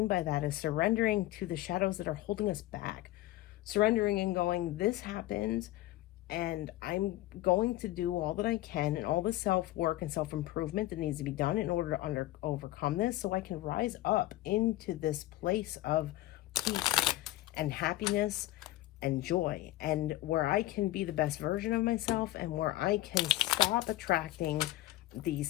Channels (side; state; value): right; quieter; 16.4 dB